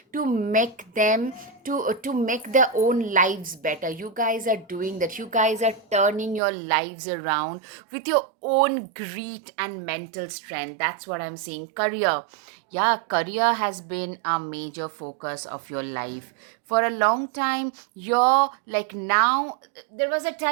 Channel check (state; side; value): drops out; left; at 6.4 s